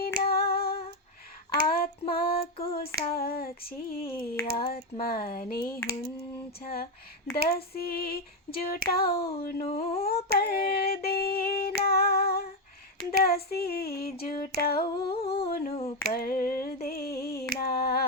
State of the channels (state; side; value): normal; both; correlation 0.07